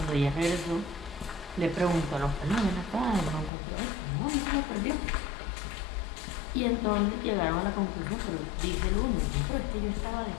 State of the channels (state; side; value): drops out; right; at 3.5 s